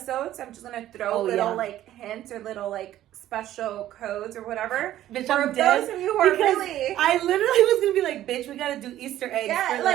I'm just gonna throw little like hints or little like special codes or whatever. Bitch, for those of you who are really, I literally was gonna be like, bitch, we gotta do Easter eggs. Yeah, for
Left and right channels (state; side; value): quieter; left; 13.1 dB